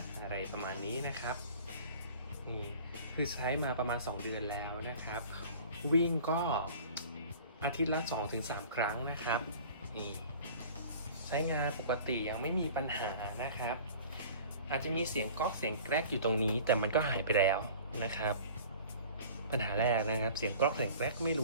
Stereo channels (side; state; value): both; inverted; correlation -0.44